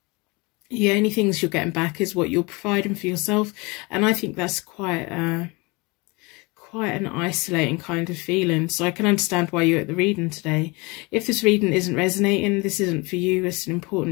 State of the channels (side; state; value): right; quieter; 26.4 dB